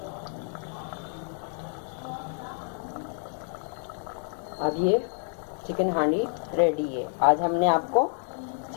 अब ये चिकन हांडी रेडी है। आज हमने आपको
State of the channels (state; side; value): silent; right; 59 dB below the other